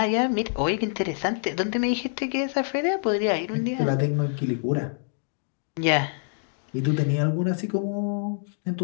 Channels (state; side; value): silent; right; digital silence